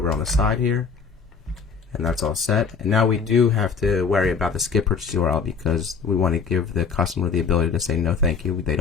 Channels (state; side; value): quieter; right; 5.7 dB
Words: on the side here, and that's all set. And now we do have to worry about the skip purchase URL because we want to give the customer the ability to say no thank you, they